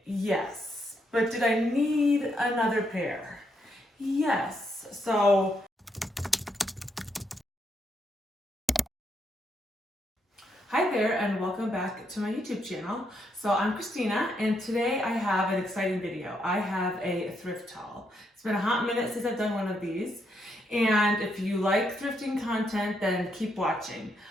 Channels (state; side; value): normal; both; correlation 0.77